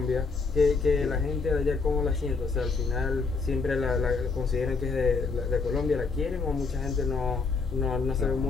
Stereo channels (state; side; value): quieter; right; 4.4 dB